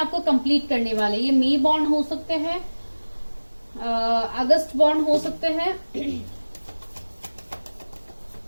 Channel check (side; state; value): both; inverted; correlation -1.00